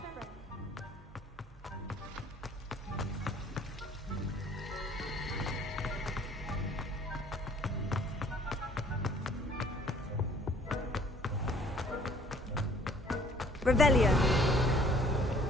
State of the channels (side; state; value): both; normal; correlation 0.56